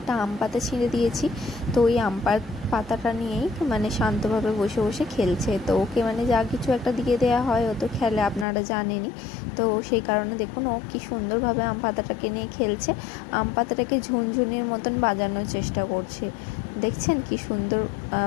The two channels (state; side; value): drops out; right; at 8.5 s